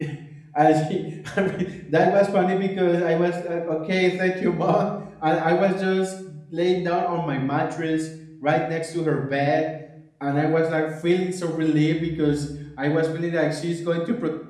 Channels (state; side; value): identical; both; correlation 1.00